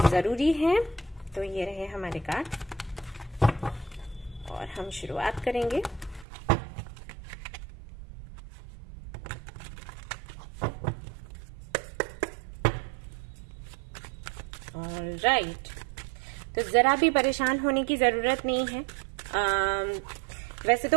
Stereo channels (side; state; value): left; drops out; at 6.2 s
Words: है। तो ये रहे हमारे कार्ड और हम शुरुआत करेंगे। ऑलराइट, तो जरा भी परेशान होने की जरूरत नहीं है। वैसे